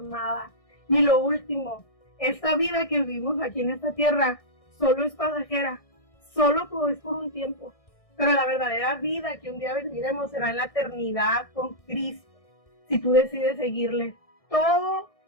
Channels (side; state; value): right; late; 1.6 ms